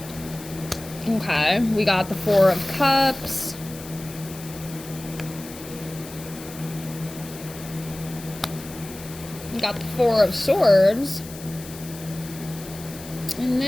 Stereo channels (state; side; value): noise; left; hiss, 15 dB below the sound